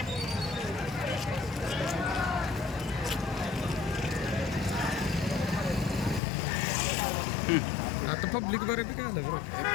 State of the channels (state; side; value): drops out; right; at 6.2 s